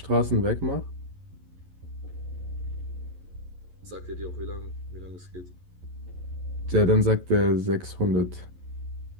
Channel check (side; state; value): left; late; 11 ms